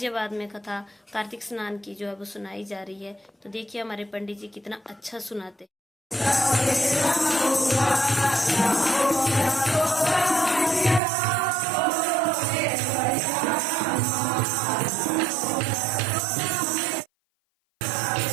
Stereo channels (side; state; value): left; drops out; at 11.0 s